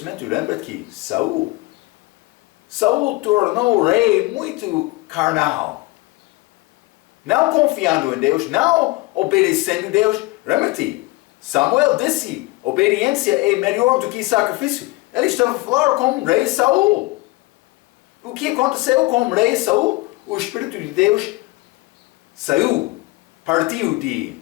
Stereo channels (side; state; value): right; quieter; 22.0 dB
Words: lembra que Saul tornou o rei muito carnal. Não confiando em Deus, não obedecendo a Deus. Lembra-te, Samuel disse, obediência é melhor do que sacrifício. Ele estava a falar com o rei Saul. O que aconteceu com o rei Saul? O Espírito de Deus saiu, partiu de